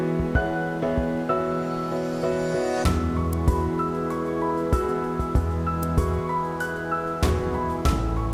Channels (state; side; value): identical; both; correlation 1.00